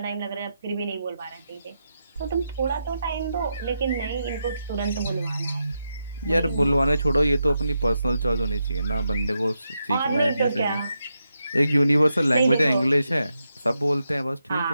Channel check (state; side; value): inverted; both; correlation -0.85